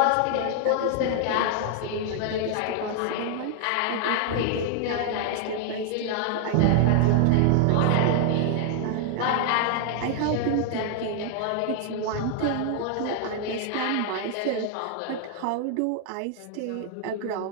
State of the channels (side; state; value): both; different; correlation 0.00